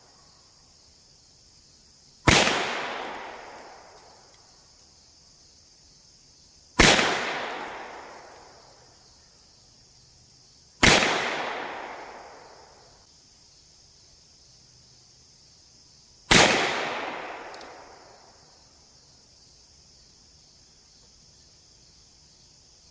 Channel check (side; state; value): both; identical; correlation 1.00